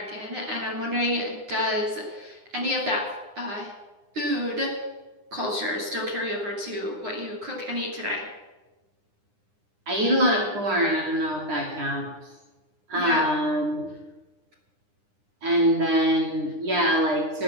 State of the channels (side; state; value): left; late; 9.8 ms